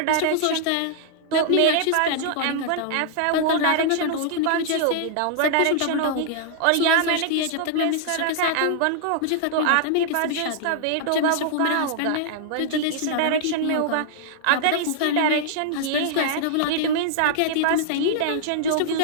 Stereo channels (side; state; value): both; different; correlation -0.01